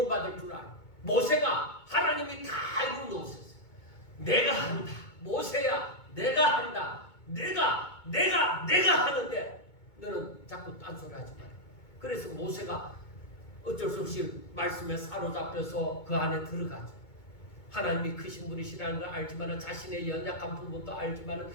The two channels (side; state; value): right; late; 2.2 ms